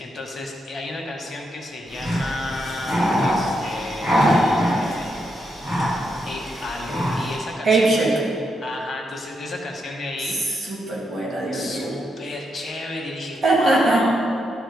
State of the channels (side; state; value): both; normal; correlation 0.81